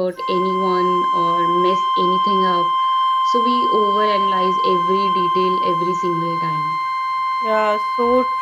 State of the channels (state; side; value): identical; both; correlation 1.00